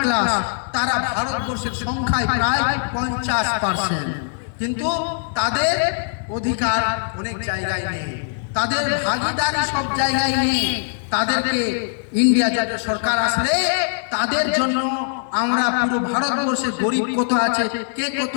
class, তারা ভারতবর্ষের সংখ্যায় প্রায় 50%, কিন্তু তাদের অধিকার অনেক জায়গায় নেই, তাদের ভাগিদারি সব জায়গায় নেই। তাদেরকে ইন্ডিয়া জোটের সরকার আসলে তাদের জন্য আমরা পুরো ভারতবর্ষে গরিব কত আছে, কে কত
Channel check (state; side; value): silent; right; 55 dB below the other